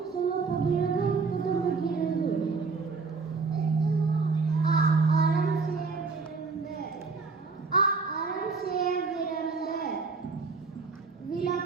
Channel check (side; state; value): left; quieter; 4.5 dB